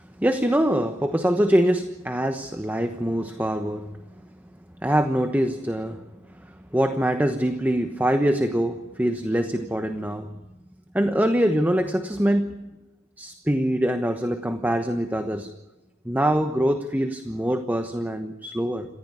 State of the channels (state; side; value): normal; both; correlation 0.89